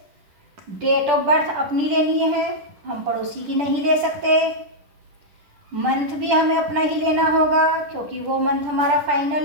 डेट ऑफ बर्थ अपनी लेनी है, हम पड़ोसी की नहीं ले सकते। मंथ भी हमें अपना ही लेना होगा क्योंकि वो मंथ हमारा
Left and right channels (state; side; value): late; left; 10 ms